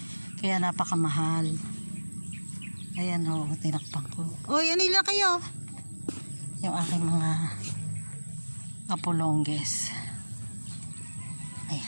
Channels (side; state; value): both; inverted; correlation -1.00